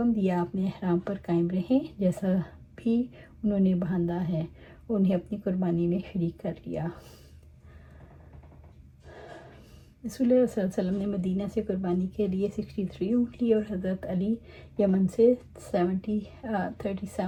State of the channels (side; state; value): both; identical; correlation 1.00